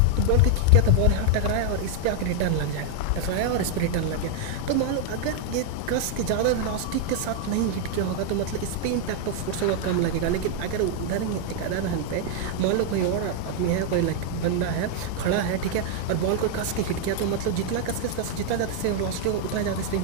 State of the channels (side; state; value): both; different; correlation 0.00